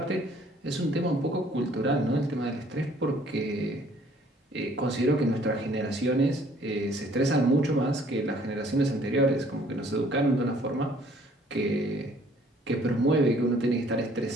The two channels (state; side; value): normal; both; correlation 0.59